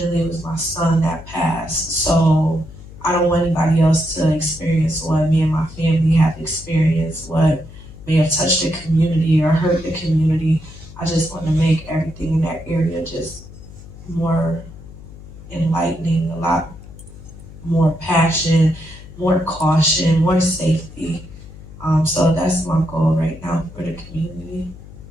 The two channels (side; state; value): left; noise; hum, 17 dB below the sound